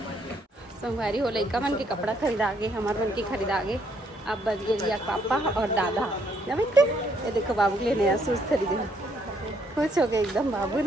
संगवारी हो। लड़का मन के कपड़ा खरीदा गे, हमारे मन के खरीदा गे। अब बच गए रिया पापा और दादा। ये देखो बाबू के लिए नया शूज खरीदे, खुश हो गए एकदम बाबू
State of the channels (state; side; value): normal; both; correlation 0.70